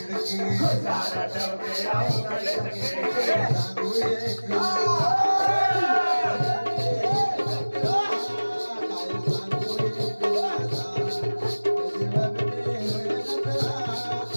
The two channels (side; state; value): both; inverted; correlation -1.00